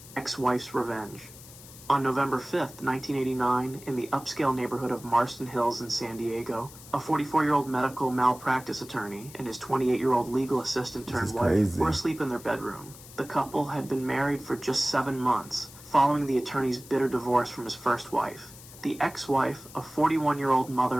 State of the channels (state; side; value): noise; left; hiss, 18 dB below the sound